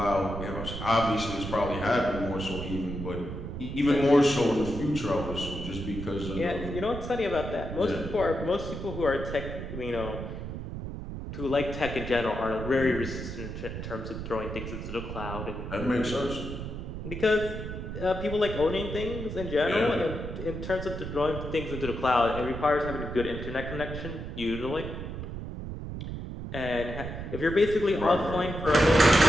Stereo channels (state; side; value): noise; right; rumble, 7 dB below the sound